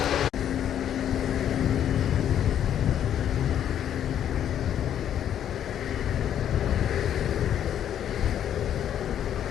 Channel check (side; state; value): right; quieter; 10.0 dB